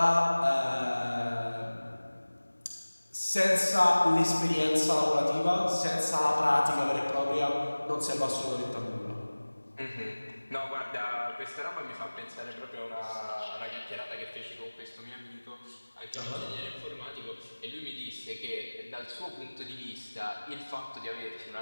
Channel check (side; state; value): both; inverted; correlation -1.00